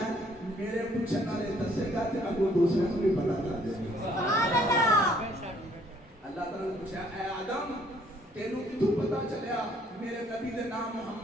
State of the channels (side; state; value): both; normal; correlation 0.63